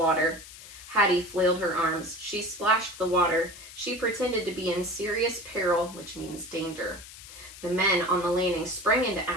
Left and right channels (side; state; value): left; noise; hiss, 16 dB below the sound